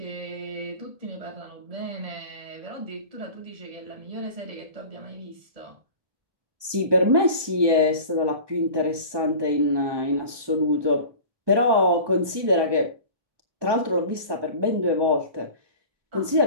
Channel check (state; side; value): late; left; 1.2 ms